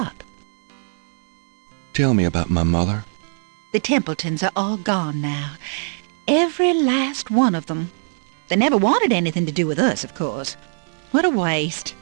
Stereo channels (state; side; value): silent; left; digital silence